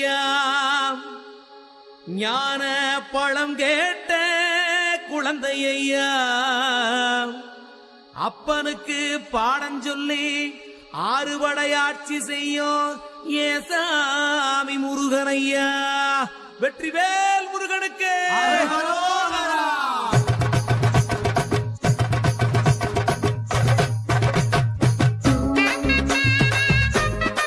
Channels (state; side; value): identical; both; correlation 1.00